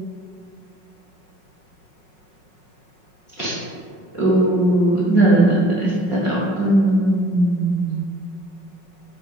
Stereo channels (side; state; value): right; late; 5.5 ms